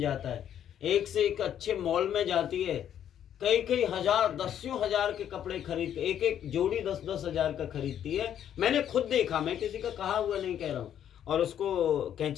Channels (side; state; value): right; quieter; 10.0 dB